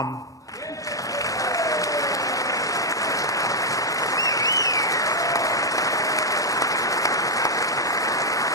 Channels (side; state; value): both; normal; correlation -0.01